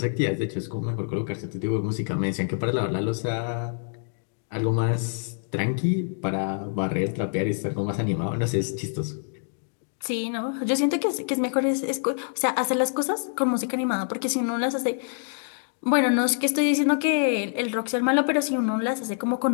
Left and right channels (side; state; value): right; silent; digital silence